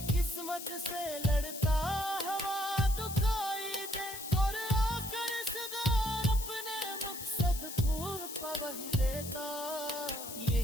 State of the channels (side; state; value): left; noise; hiss, 9 dB below the sound